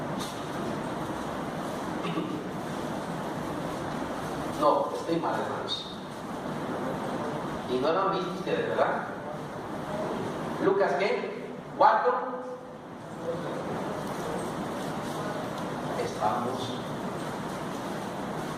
No, estoy mal, hermanos. Y no lo han visto ustedes, ¿verdad? Lucas, ¿qué? 4. Estamos.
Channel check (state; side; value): identical; both; correlation 1.00